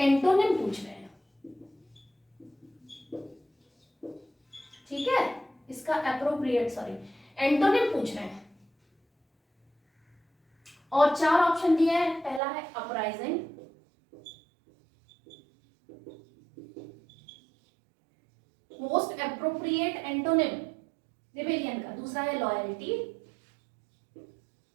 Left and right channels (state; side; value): drops out; left; at 12.4 s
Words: पूछ रहे हैं, ठीक है। इसका एप्रोप्रिएट एंटोनिम पूछ रहे हैं और 4 ऑप्शन दिए हैं। पहला है uprising, most appropriate antonym rebellion का। दूसरा है लॉयल्टी,